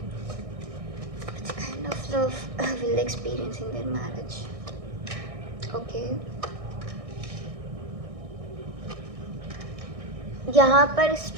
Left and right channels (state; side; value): late; left; 1.6 ms